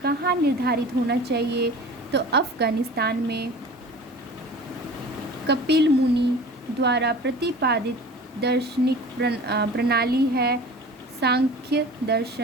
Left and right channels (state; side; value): normal; both; correlation 0.39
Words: कहाँ निर्धारित होना चाहिए तो अफगानिस्तान में। कपिल मुनि द्वारा प्रतिपादित दार्शनिक प्रणाली है सांख्य